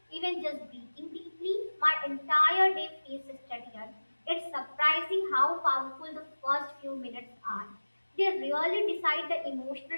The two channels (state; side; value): inverted; both; correlation -1.00